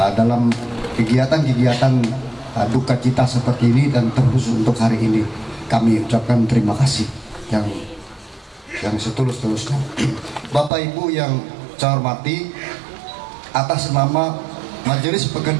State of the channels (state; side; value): drops out; left; at 10.7 s